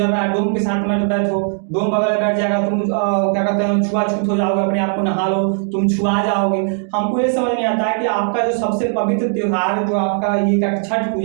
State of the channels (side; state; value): left; silent; 56 dB below the other